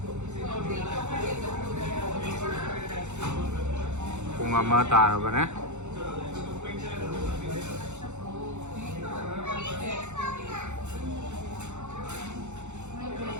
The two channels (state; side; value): late; left; 0.83 ms